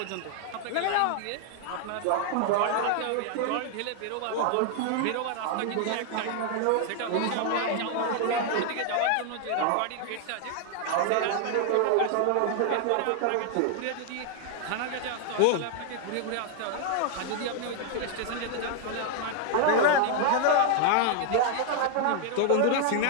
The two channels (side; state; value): both; different; correlation 0.00